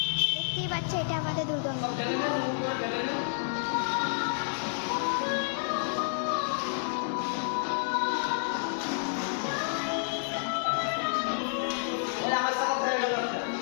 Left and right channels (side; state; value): right; silent; digital silence